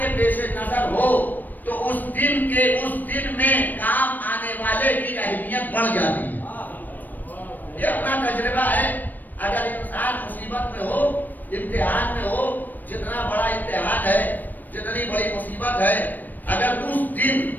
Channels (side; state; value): right; late; 0.088 ms